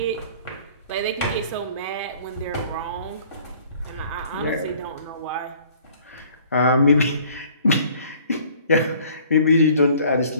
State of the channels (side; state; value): both; inverted; correlation -0.55